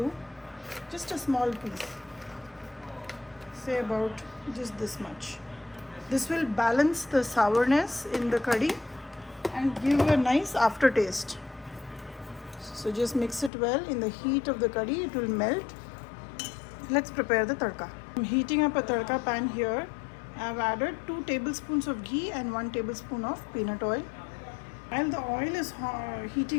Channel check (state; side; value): drops out; right; at 13.5 s